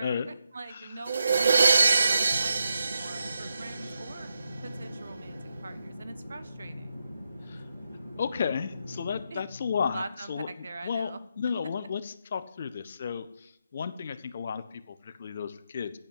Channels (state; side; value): inverted; both; correlation -0.85